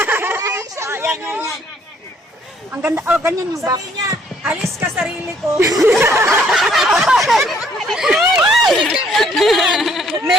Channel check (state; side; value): normal; both; correlation 0.64